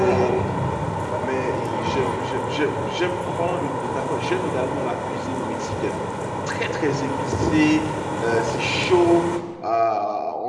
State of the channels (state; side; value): identical; both; correlation 1.00